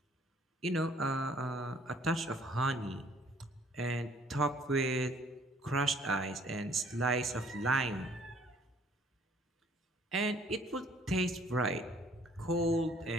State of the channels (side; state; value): both; normal; correlation 0.59